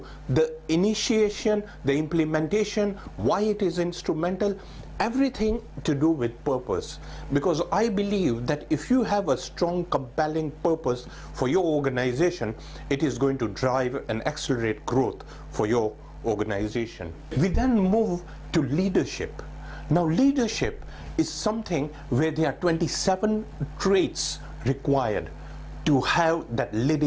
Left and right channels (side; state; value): both; identical; correlation 1.00